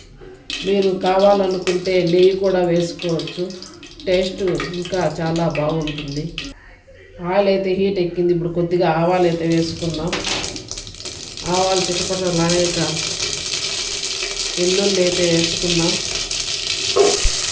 మీరు కావాలనుకుంటే నెయ్యి కూడా వేసుకోవచ్చు. టేస్ట్ ఇంకా చాలా బాగుంటుంది. ఆయిల్ అయితే హీట్ ఎక్కింది. ఇప్పుడు కొద్దిగా ఆవాలు అయితే వేసుకుందాం. ఆవాలు చిటపటలాడాక వెల్లుల్లి అయితే వేసుకుందాం.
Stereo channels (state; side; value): identical; both; correlation 1.00